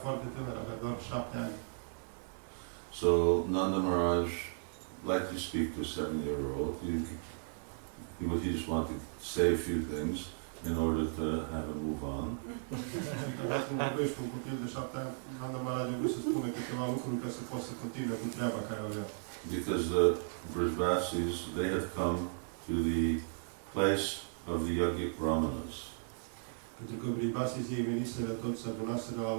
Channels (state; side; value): silent; left; 54 dB below the other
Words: foarte tânăr, avea doar 7 ani. So Nanda Maharaj, like you speak to a 7-year-old, he just wanted to say a few things in order to have him move on. Așa când vorbești cu un copil de 7 ani, Nanda Maharaj a vrut să spună câteva lucruri ca să poți să continue cu treaba care o avea. Because the Brijbasis, they had come to the place of the yogic brahmanas. Pentru că Vribasii ei veniseră toți, se adunaseră la